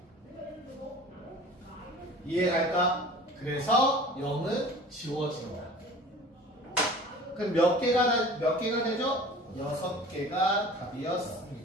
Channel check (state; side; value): normal; both; correlation 0.43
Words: 이해갈까? 그래서 0은 지워진다. 그럼 몇 개가 되죠? 6개가